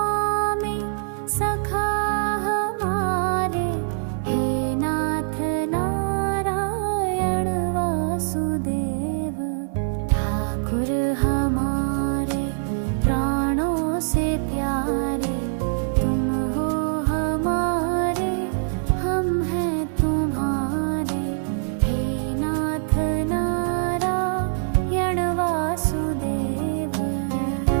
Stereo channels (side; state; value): left; silent; 63 dB below the other